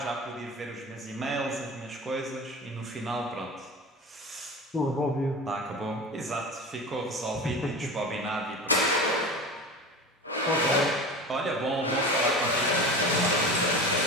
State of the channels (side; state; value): both; normal; correlation 0.31